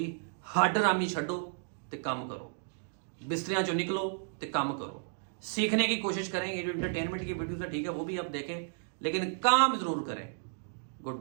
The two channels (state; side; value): silent; left; digital silence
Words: हाडरामी छड्डो ते काम करो, बिस्तरियां चो निकलो ते काम करो, सीखने की कोशिश करें। ये जो एंटरटेनमेंट की वीडियोस है ठीक है, वो भी आप देखें, लेकिन काम जरूर करें। Good